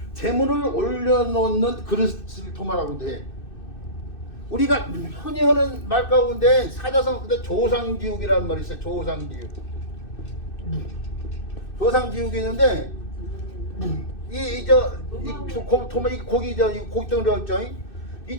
재물을 올려놓는 그릇을 도마라고 해. 우리가 흔히 하는 말 가운데 사자성 근데 조상지옥이라는 말이 있어요. 조상지옥. 조상지옥이 있는데 도마 이 고기죠. 이 고기덩어리였죠. 이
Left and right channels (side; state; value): right; late; 2.6 ms